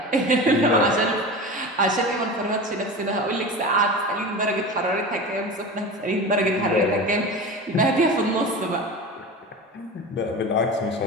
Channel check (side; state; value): both; normal; correlation 0.30